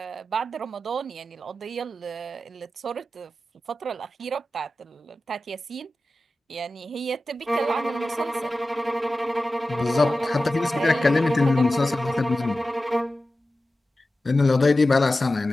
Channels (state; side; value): normal; both; correlation 0.94